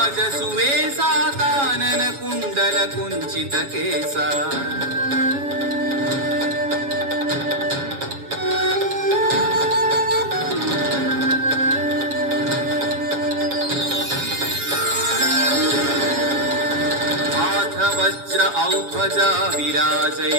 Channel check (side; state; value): left; late; 7.2 ms